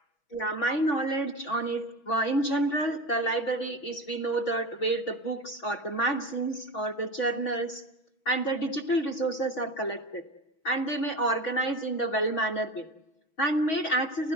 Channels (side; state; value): right; late; 6.2 ms